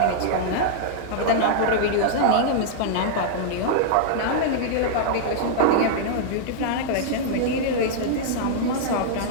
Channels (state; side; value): different; both; correlation -0.01